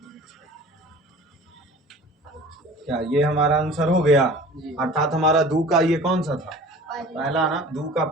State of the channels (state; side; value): normal; both; correlation 0.43